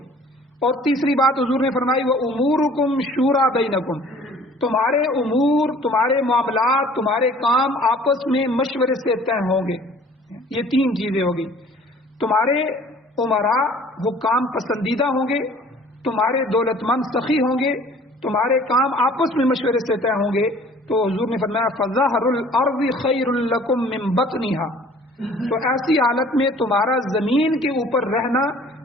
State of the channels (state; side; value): normal; both; correlation 0.51